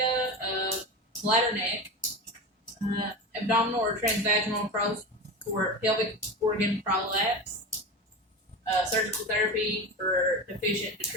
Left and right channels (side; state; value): both; normal; correlation 0.25